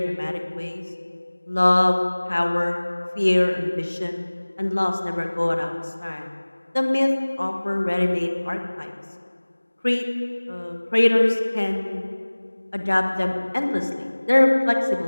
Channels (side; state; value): both; inverted; correlation -1.00